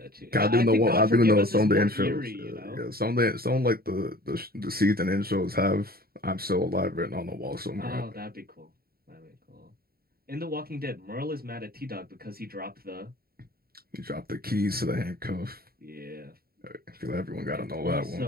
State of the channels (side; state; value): left; late; 0.44 ms